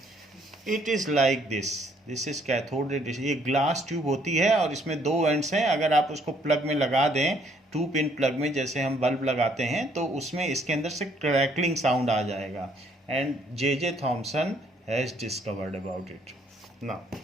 It is like this. This is cathode ray discharge. ये ग्लास ट्यूब होती है और इसमें दो एंड्स हैं. अगर आप उसको प्लग में लगा दें, 2 पिन प्लग में, जैसे हम बल्ब लगाते हैं, तो उसमें इसके अंदर से क्रैकलिंग साउंड आ जाएगा. And J.J. Thomson has discovered about it. Now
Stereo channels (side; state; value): both; normal; correlation 0.66